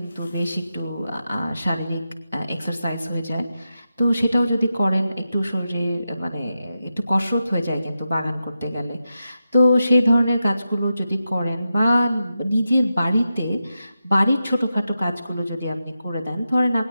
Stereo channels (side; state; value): both; inverted; correlation -0.89